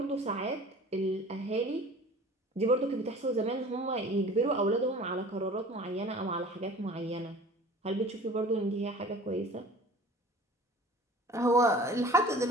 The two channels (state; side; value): normal; both; correlation 0.44